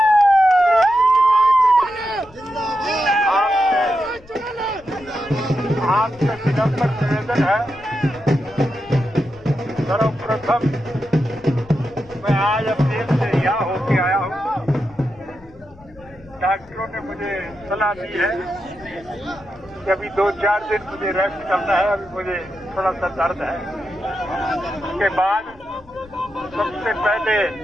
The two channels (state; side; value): noise; left; rumble, 24 dB below the sound